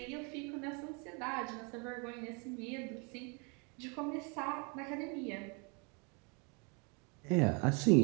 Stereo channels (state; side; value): quieter; left; 33.4 dB